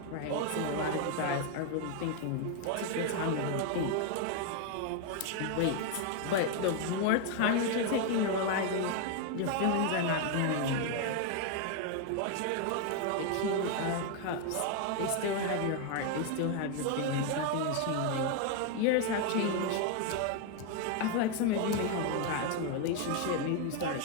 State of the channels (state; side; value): different; both; correlation 0.01